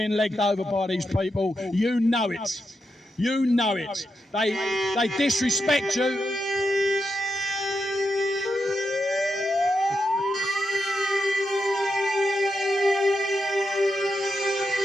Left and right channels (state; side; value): normal; both; correlation 0.86